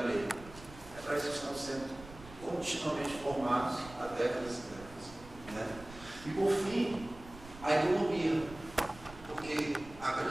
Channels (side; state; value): right; noise; rumble, 17 dB below the sound